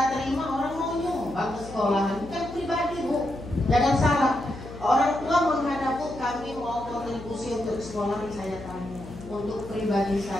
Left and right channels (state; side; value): noise; left; hum, 14 dB below the sound